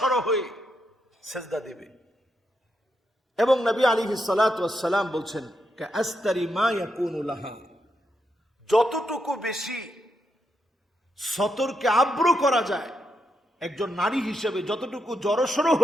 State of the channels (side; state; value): both; normal; correlation 0.82